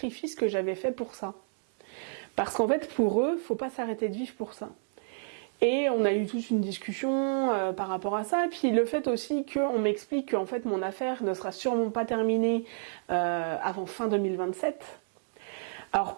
que j'avais faits pour ça. Parce qu'en fait, pour eux, faut pas s'arrêter de vivre pour ça. Et on a eu toute une discussion par rapport à ça. Et puis le fait aussi qu'on m'explique qu'en fait mon affaire ne sera sûrement pas terminée avant fin 2027. Alors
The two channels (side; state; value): left; silent; 58 dB below the other